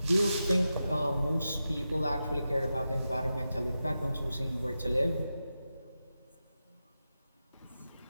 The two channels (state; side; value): inverted; both; correlation -0.91